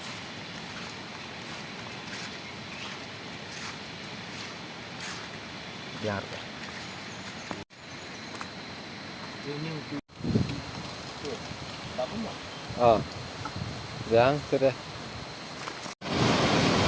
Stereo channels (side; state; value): both; identical; correlation 1.00